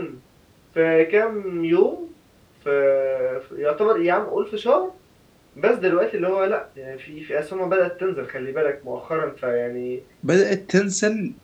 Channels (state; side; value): identical; both; correlation 1.00